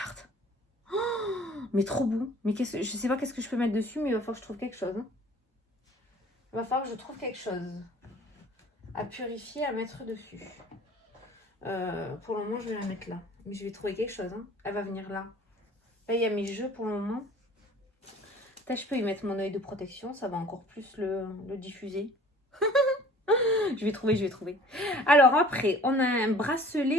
Oh, mais trop beau. Mais je sais pas qu'est-ce que je peux mettre dessus, mais il va falloir que je trouve quelque chose. Hein. Il va falloir que je trouve quelque chose à purifier, à mettre dessus. Pour le moment, je vais la mettre là. Mais je vais trouver quelque chose. Hein. Elle va venir là. Là, il y a mes jeux pour le moment. Peut-être je peux y mettre mon œil de protection. Ça va encore plus le diffuser. Je vais trouver. Alors après, on a un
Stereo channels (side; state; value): both; normal; correlation 0.49